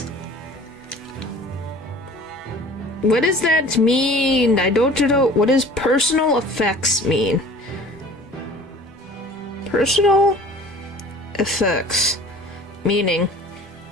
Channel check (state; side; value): normal; both; correlation 0.46